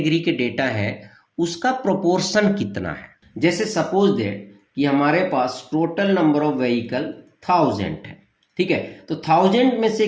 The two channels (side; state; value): both; identical; correlation 1.00